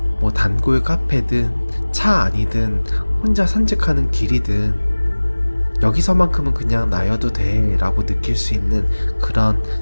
단골 카페든 차 안이든 혼자 산책하는 길이든 여기서만큼은 그냥 나여도 돼 라고 느낄 수 있는 그런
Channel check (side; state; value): both; inverted; correlation -1.00